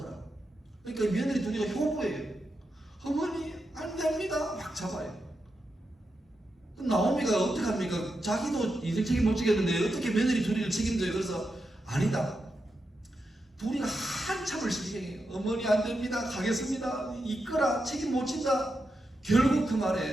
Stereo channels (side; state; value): both; normal; correlation 0.87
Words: 그러니까 며느리 둘이가 효부예요. 어머니 안 됩니다. 막 잡아요. 나오미가 어떡합니까? 자기도 인생 책임 못 지겠는데 어떻게 며느리 둘이를 책임져요? 그래서 아니다. 둘이가 한참을 신경해요. 어머니 안 됩니다. 가겠습니다. 이끌어 책임 못 진다. 결국 그